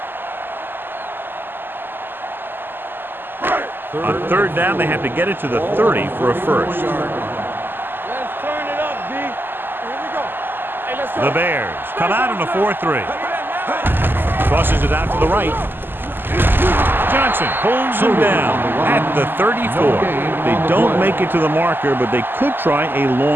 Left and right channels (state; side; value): late; left; 0.096 ms